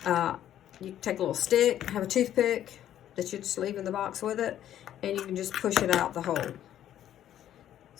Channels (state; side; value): quieter; right; 11.4 dB